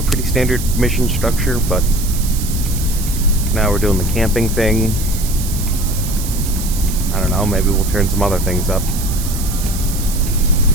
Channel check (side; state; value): right; noise; hiss, 9 dB below the sound